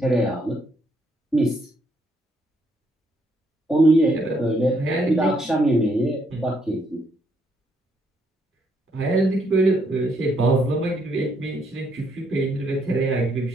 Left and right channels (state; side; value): normal; both; correlation 0.73